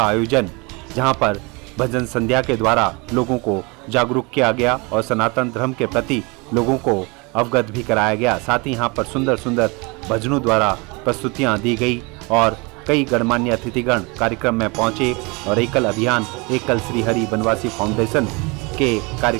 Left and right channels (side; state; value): left; quieter; 28.1 dB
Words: आयोजन, जहां पर भजन संध्या के द्वारा लोगों को जागरूक किया गया और सनातन धर्म के प्रति लोगों को अवगत भी कराया गया। साथ ही यहाँ पर सुंदर सुंदर भजनों द्वारा प्रस्तुतियाँ दी गई और कई गणमान्य अतिथिगण कार्यक्रम में पहुंचे और एकल अभियान एकल श्री हरि बनवासी फाउंडेशन के